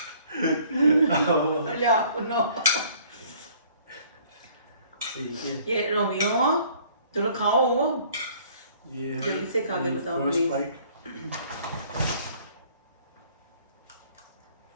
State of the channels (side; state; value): both; inverted; correlation -0.57